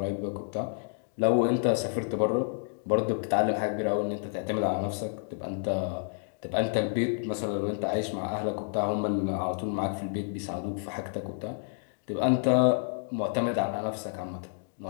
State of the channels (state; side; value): silent; right; digital silence